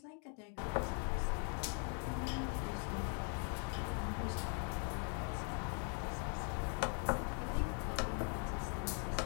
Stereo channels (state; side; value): quieter; right; 40.0 dB